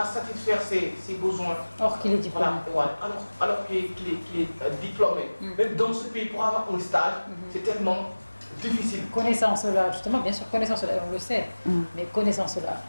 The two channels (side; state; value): both; inverted; correlation -1.00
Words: satisfaire ses besoins. Or qu'il est diplômé. Voilà, alors qu'il est diplômé. Même dans ce pays, pour avoir un stage, c'est tellement difficile. Connaissant cela, justement, bien sûr, connaissant cela, on le sait, mais connaissant cela,